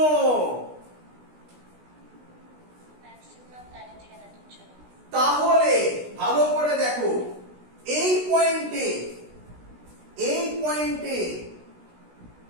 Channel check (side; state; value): left; late; 16 ms